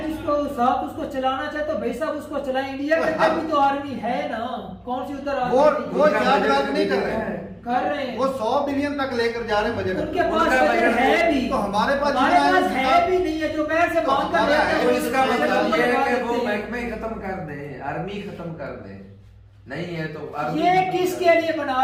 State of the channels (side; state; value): both; identical; correlation 1.00